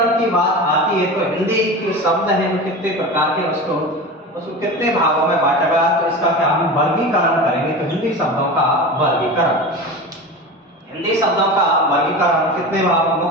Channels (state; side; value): normal; both; correlation 0.29